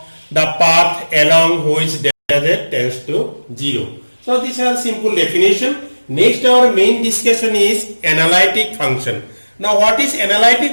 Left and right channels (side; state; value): both; inverted; correlation -1.00